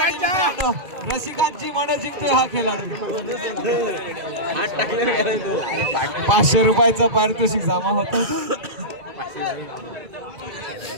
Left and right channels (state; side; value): late; left; 2.3 ms